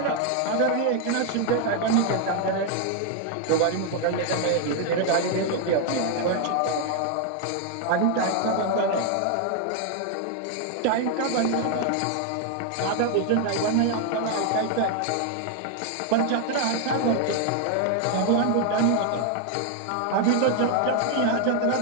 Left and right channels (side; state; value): both; different; correlation 0.00